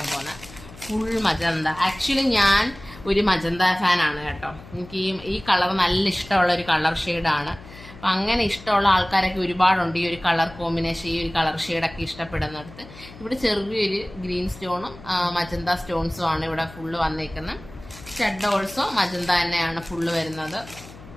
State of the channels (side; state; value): left; noise; hum, 18 dB below the sound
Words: പോകുന്നത്. Full magenta. ആക്ച്വലി ഞാൻ ഒരു മജന്ത ഫാനാണ് കേട്ടോ. എനിക്ക് ഈ കളർ നല്ല ഇഷ്ടമുള്ള ഒരു കളർ ഷെയ്ഡാണ്. അപ്പം അങ്ങനെ ഇഷ്ടമുള്ള ആൾക്കാരൊക്കെ ഒരുപാടുണ്ട്. ഈ ഒരു കളർ കോമ്പിനേഷൻ, ഈ ഒരു കളർ ഷെയ്ഡൊക്കെ ഇഷ്ടപ്പെടുന്നിടത്ത് ഇവിടെ ചെറിയൊരു ഗ്രീൻ സ്റ്റോണും മജന്ത സ്റ്റോൺസും ആണ് ഇവിടെ ഫുള്ള് വന്നേക്കുന്നത്. സ്റ്റഡ് ഓൾസോ മജന്ത തന്നെയാണ് ഫുള്ള് വരുന്നത്.